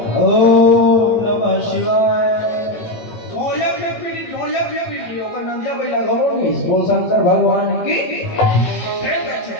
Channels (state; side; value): late; right; 18 ms